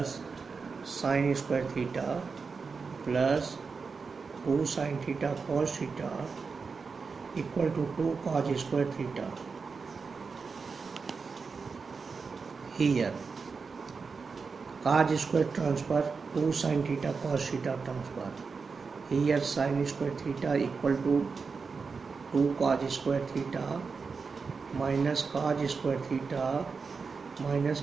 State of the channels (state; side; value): quieter; left; 5.0 dB